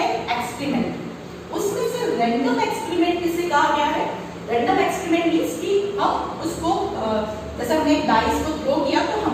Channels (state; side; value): identical; both; correlation 1.00